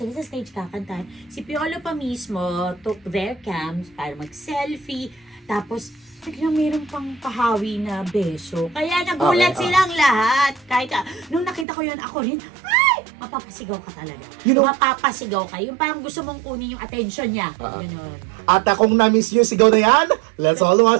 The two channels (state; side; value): drops out; left; at 11.7 s